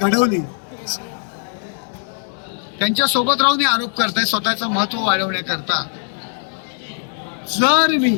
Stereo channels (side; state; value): right; silent; 66 dB below the other